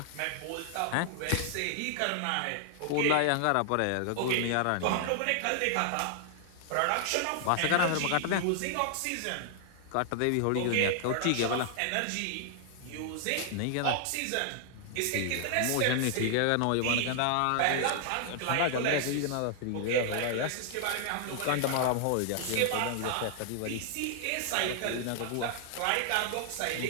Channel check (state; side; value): different; both; correlation 0.00